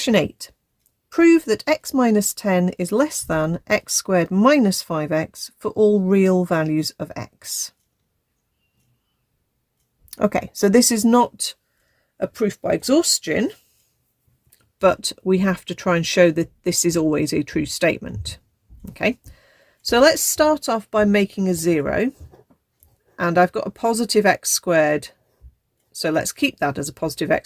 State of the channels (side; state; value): both; identical; correlation 1.00